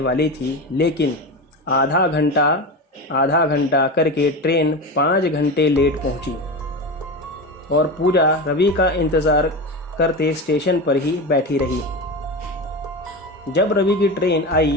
थी, लेकिन आधा घंटा करके ट्रेन 5 घंटे लेट पहुंची और पूजा रवि का इंतज़ार करते स्टेशन पर ही बैठी रही। जब रवि की ट्रेन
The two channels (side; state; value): both; normal; correlation 0.23